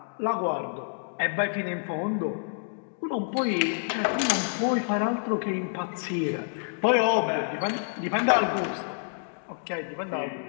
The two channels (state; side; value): silent; right; digital silence